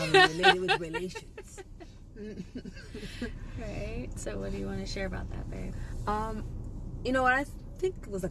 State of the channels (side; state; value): both; identical; correlation 1.00